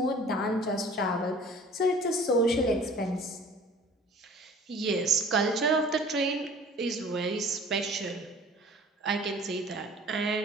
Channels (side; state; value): both; normal; correlation 0.48